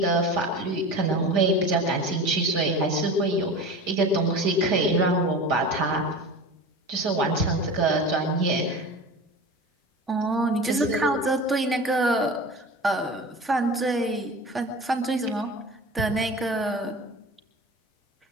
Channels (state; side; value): normal; both; correlation 0.33